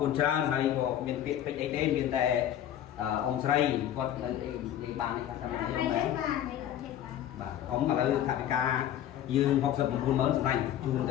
គុណច្រើនហើយក៏មានពាក្យពេចន៍អីទេមានតែអង្គស្រីគាត់និយាយបាននេះថាតាមខ្ញុំដែរបាទអ៊ំឥឡូវថវិកាយើង69,000សម្ដេចជូនទ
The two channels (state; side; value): quieter; right; 11.1 dB